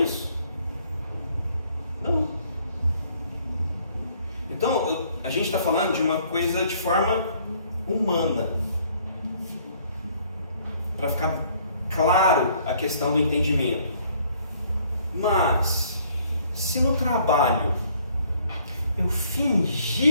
Não. Então, a gente está falando de uma coisa de forma humana. Para ficar claro a questão do entendimento. Mas, se no trabalho eu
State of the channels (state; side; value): inverted; both; correlation -0.62